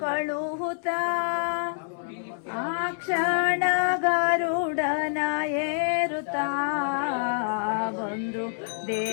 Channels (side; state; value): right; silent; 60 dB below the other